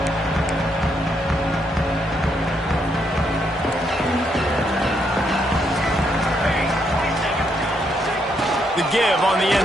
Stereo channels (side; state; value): both; normal; correlation 0.76